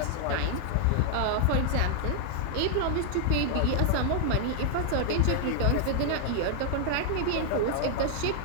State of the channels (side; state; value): both; different; correlation 0.00